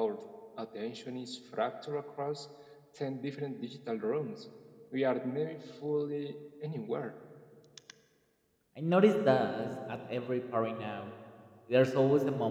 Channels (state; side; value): identical; both; correlation 1.00